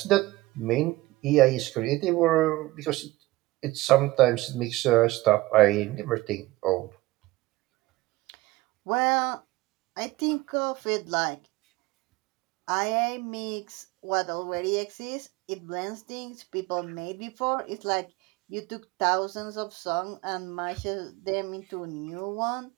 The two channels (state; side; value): quieter; left; 19.3 dB